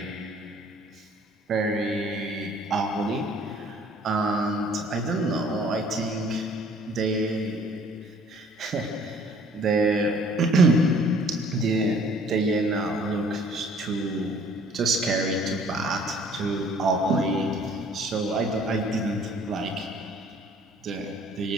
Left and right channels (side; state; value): both; normal; correlation 0.55